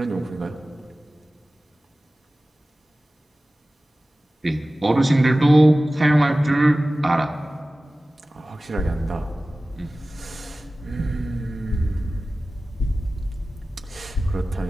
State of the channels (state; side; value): normal; both; correlation 0.96